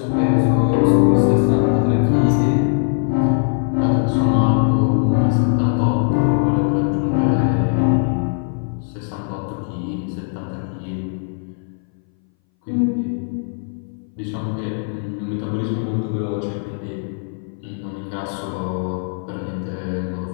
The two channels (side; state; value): right; silent; 61 dB below the other